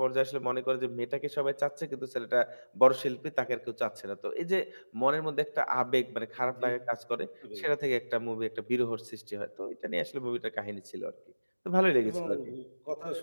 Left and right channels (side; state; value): both; inverted; correlation -1.00